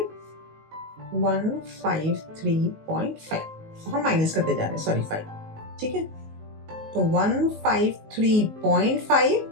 153.5, हम माइनस करते जा रहे हैं, सॉरी 5, ठीक है। तो 153.5,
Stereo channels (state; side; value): late; left; 19 ms